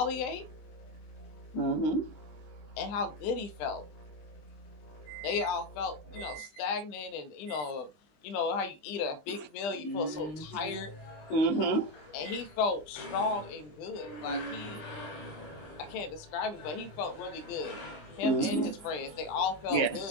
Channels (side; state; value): right; late; 20 ms